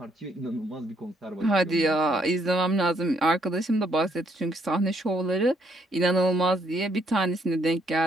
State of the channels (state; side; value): normal; both; correlation 0.71